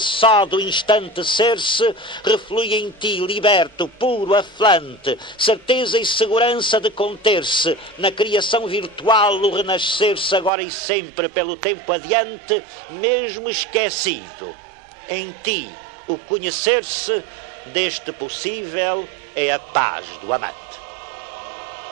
do instante ser-se, reflui em ti, liberto, puro, aflante, certeza e segurança de conter-se, na criação virtual o renascer-se agora e sempre pelo tempo adiante, mesmo esquecido. Em ti, o conhecer-se deste possível é a paz do amante.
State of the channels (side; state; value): left; drops out; at 10.5 s